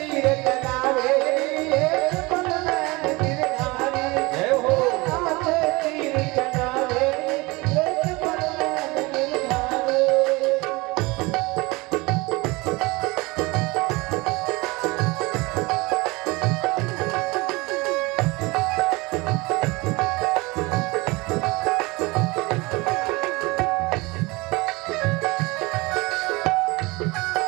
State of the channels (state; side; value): quieter; left; 23.9 dB